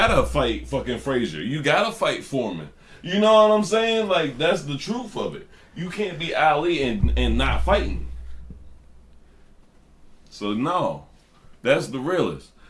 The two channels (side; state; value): both; identical; correlation 1.00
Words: fight fucking Frazier. You gotta fight Foreman. You know what I'm saying? Like, that's the truth of it. You can't be Ali and not fighting. So no, that's the realest.